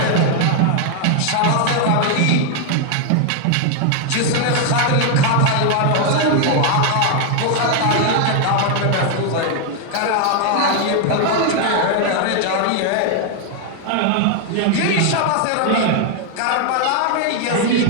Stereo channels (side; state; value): both; different; correlation 0.00